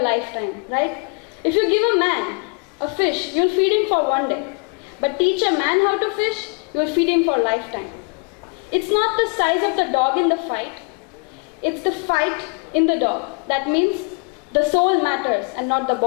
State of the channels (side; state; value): right; quieter; 36.9 dB